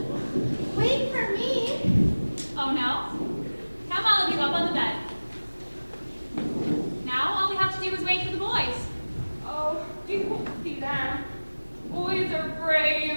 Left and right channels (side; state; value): both; inverted; correlation -1.00